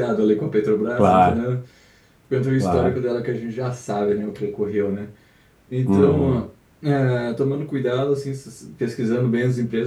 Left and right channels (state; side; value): identical; both; correlation 1.00